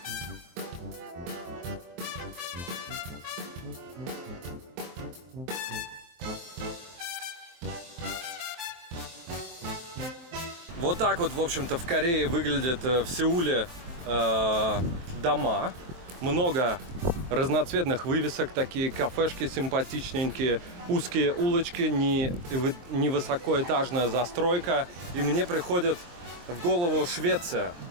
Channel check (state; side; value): late; left; 23 ms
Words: Вот так вот, в общем-то, в Корее выглядят в Сеуле дома. Много разноцветных вывесок, такие кафешки симпатичненькие, узкие улочки, не высокоэтажная застройка. И мне приходит в голову Швеция.